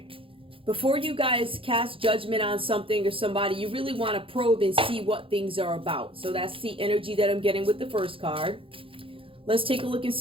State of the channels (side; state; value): left; late; 0.26 ms